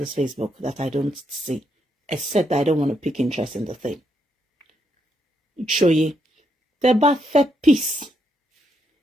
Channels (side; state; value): both; normal; correlation 0.78